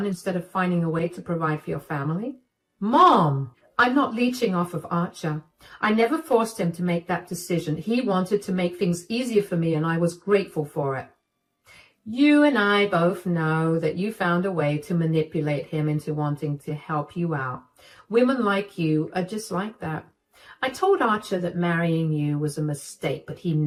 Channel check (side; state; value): both; identical; correlation 1.00